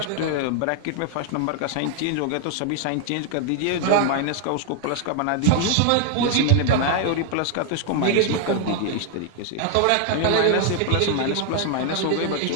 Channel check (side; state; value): both; different; correlation 0.00